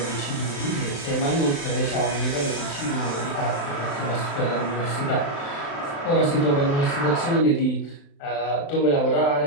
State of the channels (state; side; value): late; right; 35 ms